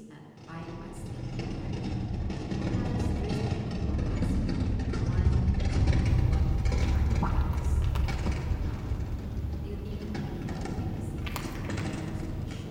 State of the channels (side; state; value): both; identical; correlation 1.00